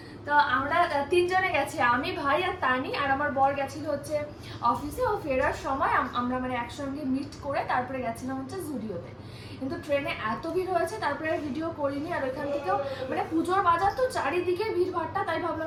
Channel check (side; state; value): both; identical; correlation 1.00